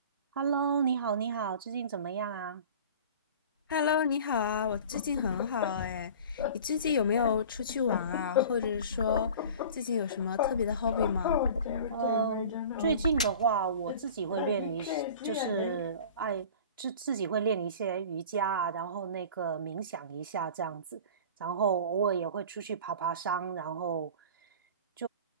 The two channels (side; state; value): both; inverted; correlation -0.40